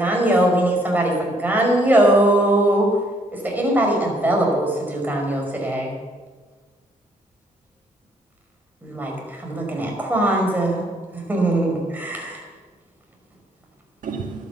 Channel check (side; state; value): both; normal; correlation 0.67